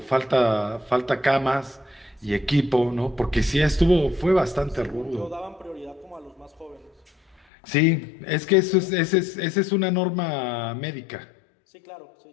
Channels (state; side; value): drops out; right; at 7.4 s